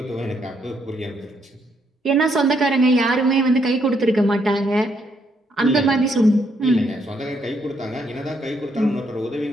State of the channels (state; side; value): normal; both; correlation 0.74